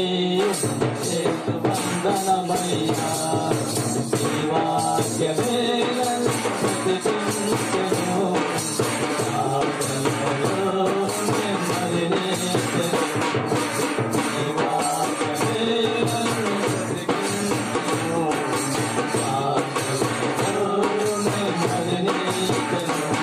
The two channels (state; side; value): identical; both; correlation 1.00